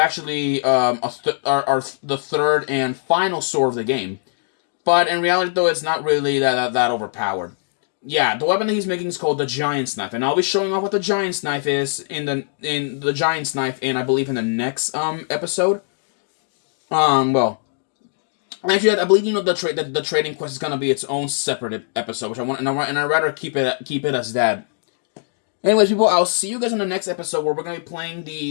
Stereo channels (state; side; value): silent; right; digital silence